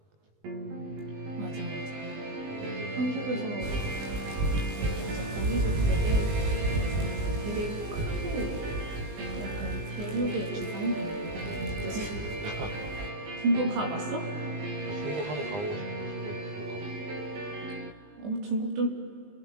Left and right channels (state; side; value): late; left; 20 ms